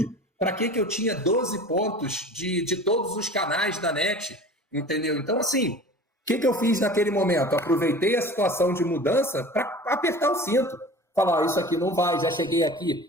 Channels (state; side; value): normal; both; correlation 0.40